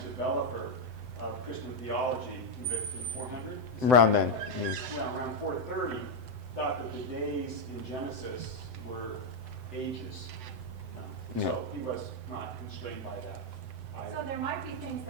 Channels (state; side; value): late; left; 7.9 ms